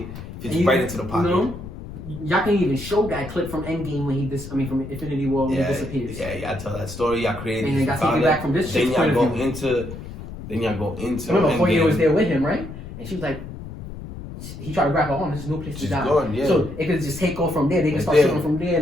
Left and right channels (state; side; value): noise; left; rumble, 11 dB below the sound